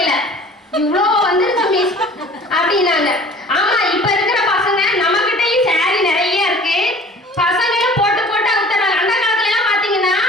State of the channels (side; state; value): both; normal; correlation 0.47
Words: இவ்வளோ வந்துருச்சு மிஸ் அப்படின்னாங்க. ஆமா, இப்ப இருக்கிற பசங்க நம்ம கிட்டயும் சாரி நிறைய இருக்கு, பசங்களும் போட்டு அவுத்துறாங்க. அந்த காலத்துல எல்லாம் பாத்தீங்கன்னா